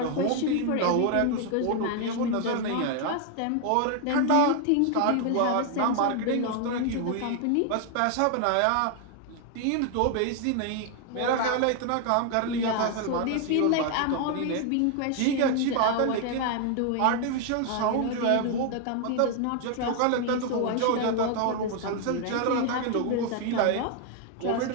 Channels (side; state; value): both; different; correlation 0.00